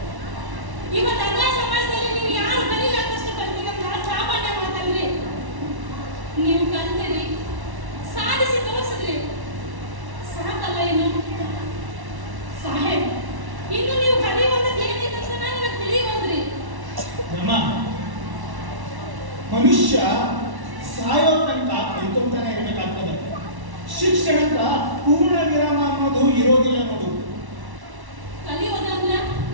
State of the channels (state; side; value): late; left; 1.1 ms